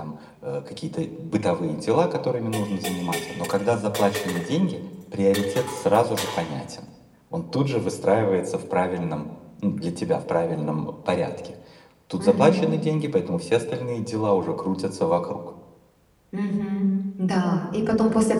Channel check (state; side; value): identical; both; correlation 1.00